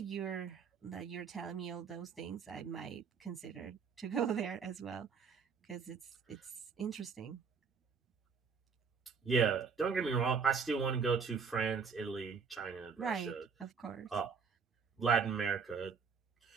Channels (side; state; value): left; quieter; 5.8 dB